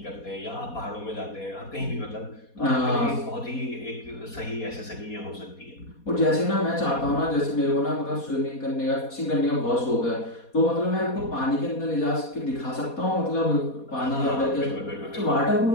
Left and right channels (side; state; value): right; late; 4.2 ms